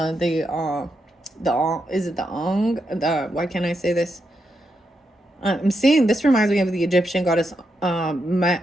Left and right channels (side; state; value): both; normal; correlation 0.83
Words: it the Ong? Why can't I say this? I'm seeing, this reminds me of the Egyptian goddess